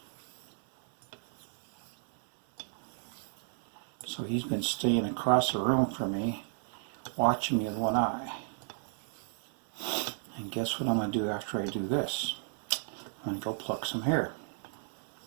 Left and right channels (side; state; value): left; silent; digital silence